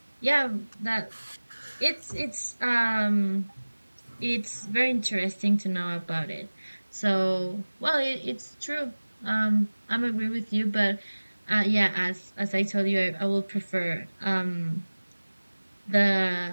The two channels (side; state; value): both; inverted; correlation -1.00